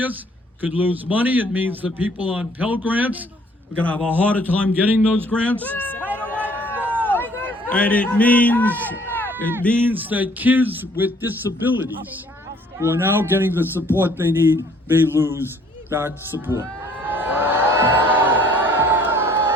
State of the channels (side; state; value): both; normal; correlation 0.59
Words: could lose money. It means that people on Pell Grants are going to have a harder time getting those grants. And it means that kids with disabilities who are now getting the support they need may lose that support.